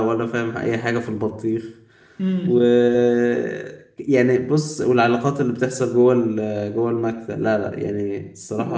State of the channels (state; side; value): identical; both; correlation 1.00